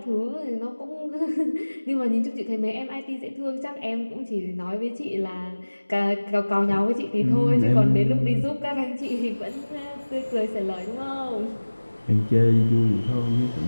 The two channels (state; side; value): inverted; both; correlation -1.00